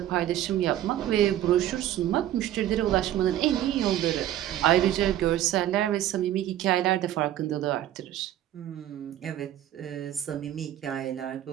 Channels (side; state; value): left; quieter; 12.5 dB